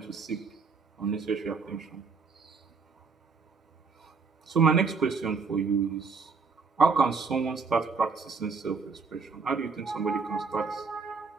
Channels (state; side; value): quieter; left; 4.9 dB